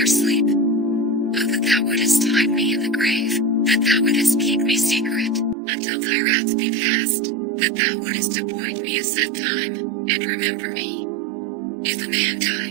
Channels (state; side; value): drops out; left; at 5.6 s